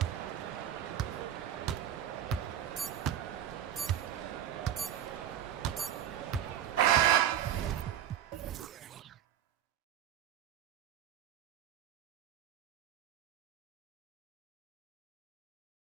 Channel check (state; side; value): quieter; left; 10.3 dB